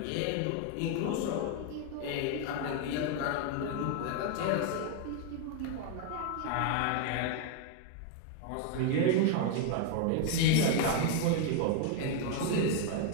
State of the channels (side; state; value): both; different; correlation 0.00